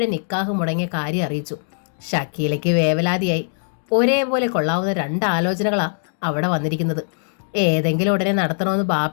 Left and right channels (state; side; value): silent; right; digital silence